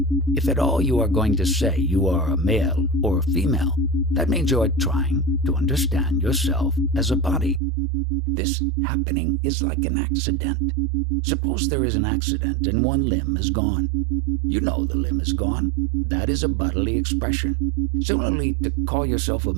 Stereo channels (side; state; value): left; drops out; at 7.6 s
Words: If at all you are going to say you are a male or a female, that means you are trying to understand yourself as a body. This happening is like an accident. Suppose there is an accident and one limb is gone. You know the limb is gone. That is a bodily expression. Similarly, to call yourself a